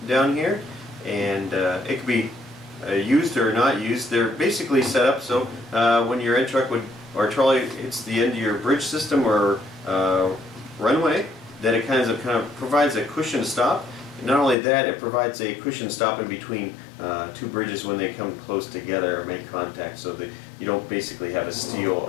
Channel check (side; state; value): right; drops out; at 14.6 s